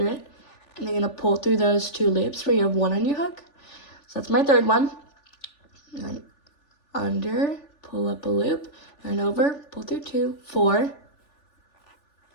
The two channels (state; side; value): late; right; 3.4 ms